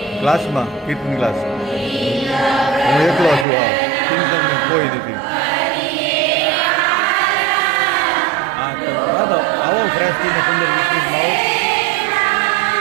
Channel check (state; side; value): drops out; left; at 3.5 s